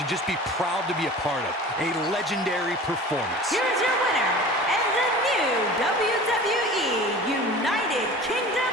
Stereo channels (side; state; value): both; normal; correlation 0.39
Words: just be proud to be a part of. A legendary performance. Here's your winner, and the new WWE United Kingdom